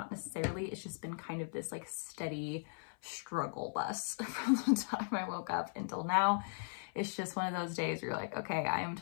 necessarily. It's just been kind of this like steady struggle bus from the time I woke up until now. It's just one of those days where you're like, okay, I am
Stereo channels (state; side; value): silent; right; 52 dB below the other